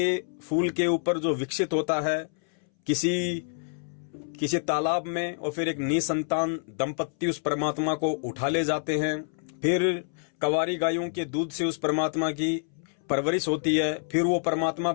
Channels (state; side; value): silent; right; 60 dB below the other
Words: फूल के ऊपर जो विकसित होता है किसी तालाब में, और फिर एक निसंतान दंपत्ति उस परमात्मा को उठा ले जाते हैं। फिर कवारी गायों के दूध से उस परमात्मा की परवरिश होती है। फिर वो परमात्मा